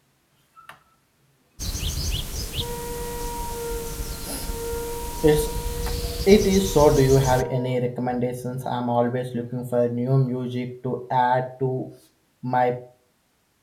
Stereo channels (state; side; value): identical; both; correlation 1.00